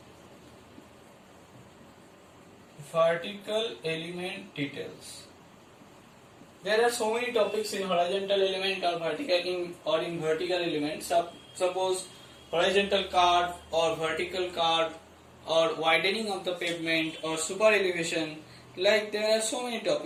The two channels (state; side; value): identical; both; correlation 1.00